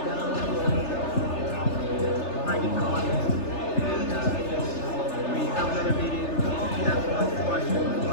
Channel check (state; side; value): late; right; 3.3 ms